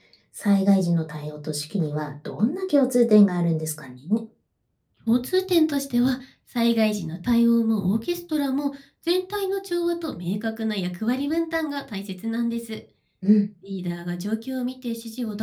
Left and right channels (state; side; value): identical; both; correlation 1.00